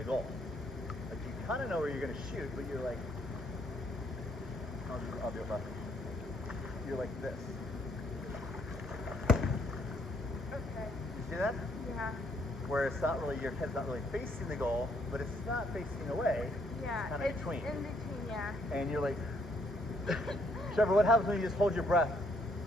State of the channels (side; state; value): both; normal; correlation 0.69